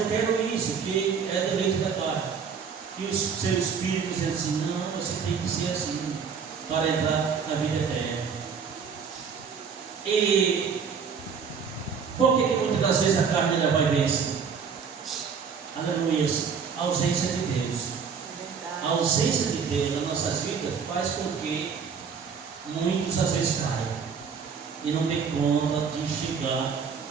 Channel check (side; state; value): left; quieter; 6.3 dB